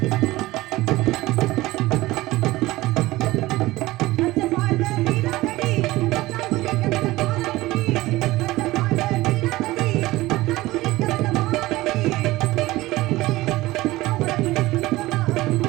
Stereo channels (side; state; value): left; quieter; 18.5 dB